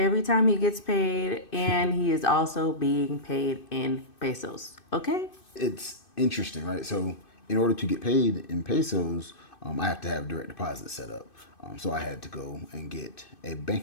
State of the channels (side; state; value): right; late; 2.6 ms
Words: time he gets paid, and he is also being paid in pesos. Okay? It's interesting, right? So in order to get paid in pesos, I have to have direct deposit set up. So I had to go and get a